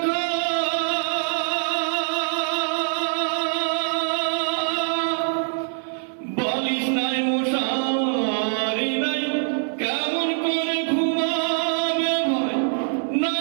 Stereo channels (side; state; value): left; silent; 57 dB below the other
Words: বালিশ নাই মশারি নাই, কেমন করে ঘুমাবে ভাই,